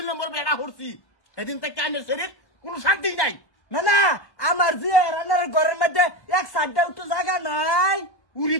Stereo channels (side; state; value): right; late; 1.2 ms